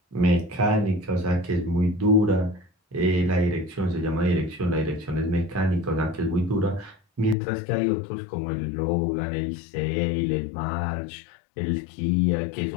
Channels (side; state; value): right; drops out; at 7.4 s